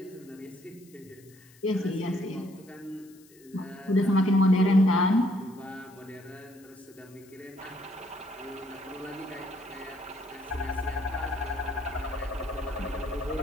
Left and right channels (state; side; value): noise; left; hiss, 26 dB below the sound